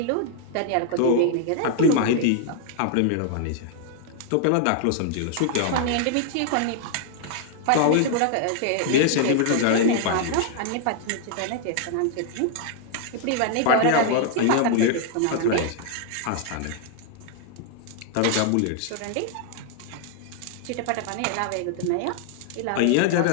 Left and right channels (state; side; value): different; both; correlation 0.00